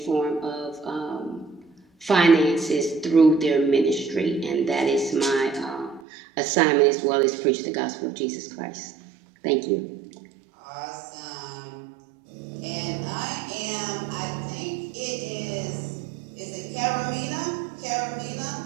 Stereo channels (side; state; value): left; drops out; at 6.0 s